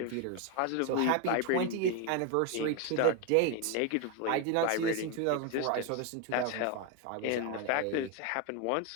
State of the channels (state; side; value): different; both; correlation 0.02